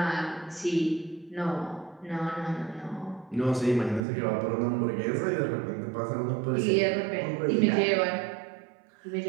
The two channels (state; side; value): drops out; left; at 4.0 s